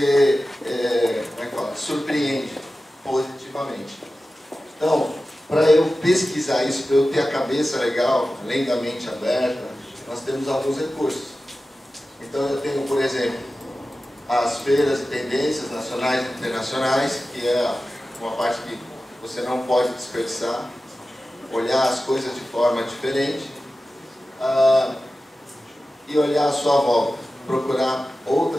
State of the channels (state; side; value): normal; both; correlation 0.94